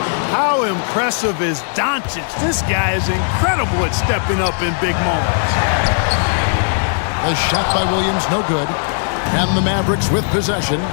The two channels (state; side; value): silent; right; digital silence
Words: How impressive is Doncic? This guy is incredible at stepping up in big moments. The shot by Williams, no good. And the Mavericks with possession.